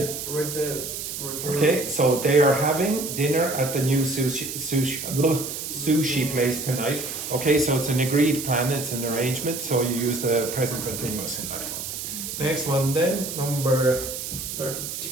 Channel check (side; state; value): right; noise; hiss, 6 dB below the sound